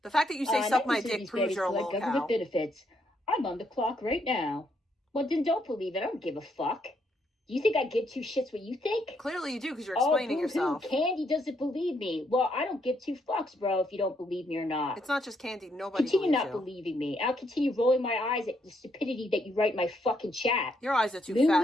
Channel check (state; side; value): normal; both; correlation 0.74